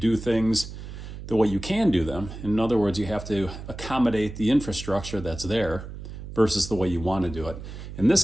things the way you can do them. In other words, you have to accommodate the infrastructure that's there versus the way you want to do it. In this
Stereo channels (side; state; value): right; noise; hum, 11 dB below the sound